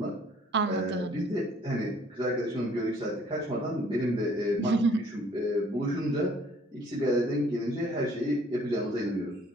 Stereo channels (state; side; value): normal; both; correlation 0.59